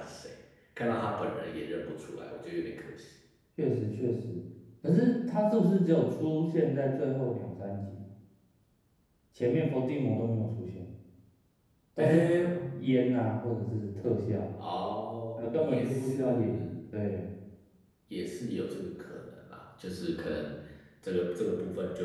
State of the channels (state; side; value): identical; both; correlation 1.00